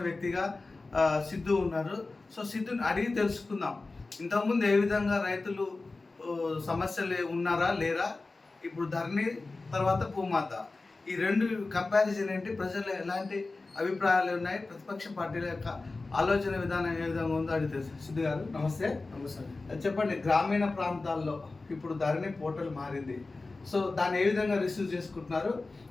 వ్యక్తిగా సిద్ధు ఉన్నారు. సో సిద్ధుని అడిగి తెలుసుకుందాం, ఇంతకుముందు ఏ విధంగా రైతులు సమస్యలు ఉన్నారా లేరా, ఇప్పుడు ధరణి తర్వాత భూమాత, ఈ రెండు కంపారిజన్ ఏంటి, ప్రజలు ఎలాంటి అభిప్రాయాలు ఉన్నాయి, ప్రతిపక్ష పార్టీల యొక్క ఆలోచన విధానం ఏ విధంగా ఉందో అడిగితే. సిద్ధు గారు నమస్తే. నమస్తే. చెప్పండి, గ్రామీణ ప్రాంతాల్లో ఇప్పుడు ధరణి పోర్టల్ మారింది, సో దాన్ని ఏ విధంగా రిసీవ్ చేసుకుంటున్నారు,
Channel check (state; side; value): quieter; right; 3.5 dB